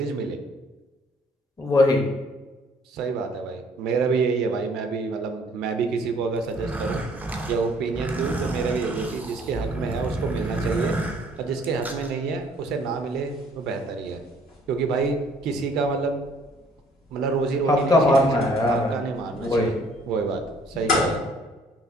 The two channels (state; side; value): normal; both; correlation 0.60